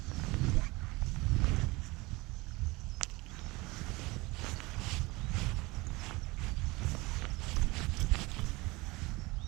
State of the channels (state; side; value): quieter; left; 23.2 dB